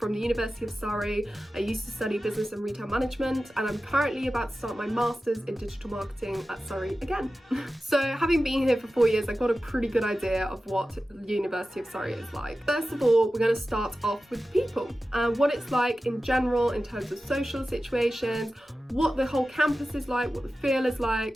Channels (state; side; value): normal; both; correlation 0.94